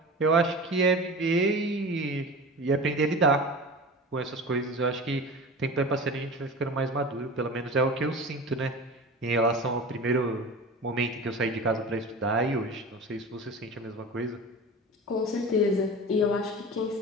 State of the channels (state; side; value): normal; both; correlation 0.33